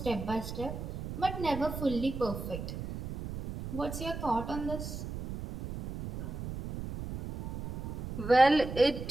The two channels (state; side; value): noise; right; rumble, 7 dB below the sound